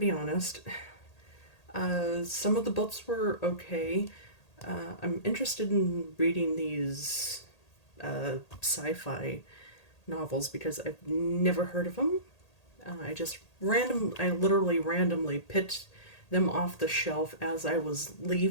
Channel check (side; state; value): right; late; 1.8 ms